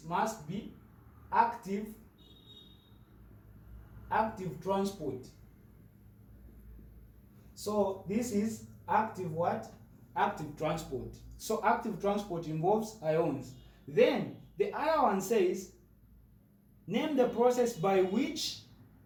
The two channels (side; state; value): both; identical; correlation 1.00